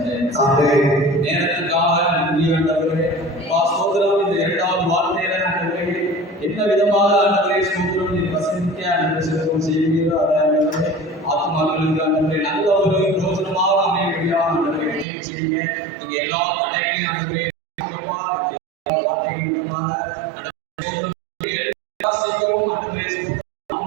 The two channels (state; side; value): drops out; left; at 15.1 s